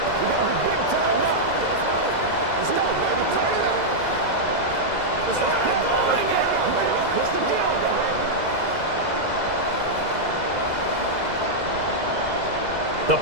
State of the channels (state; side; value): late; left; 2.0 ms